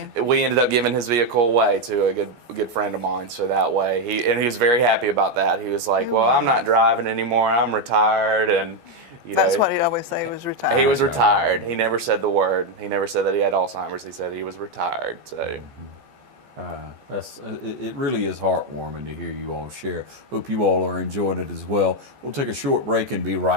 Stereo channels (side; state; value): left; late; 14 ms